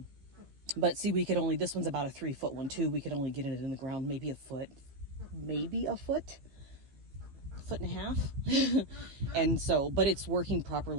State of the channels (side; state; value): left; late; 15 ms